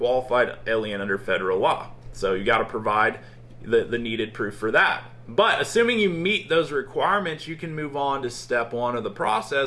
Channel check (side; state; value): both; identical; correlation 1.00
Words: alien under federal law. So you got to provide the needed proof for that. But assuming you meet those requirements, you can move on to step one of the